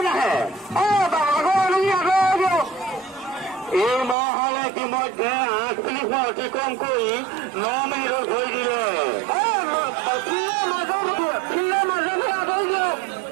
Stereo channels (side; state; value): left; drops out; at 4.2 s